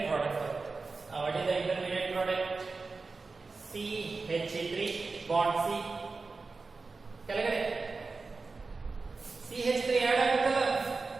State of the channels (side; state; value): left; quieter; 4.1 dB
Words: ಪ್ರಾಡಕ್ಟ್ ಬರುತ್ತೆ. What is the intermediate product? CH3 bond C ಕೆಳಗಡೆ CH3 ಆಡ್ ಆಗುತ್ತಲ್ಲ,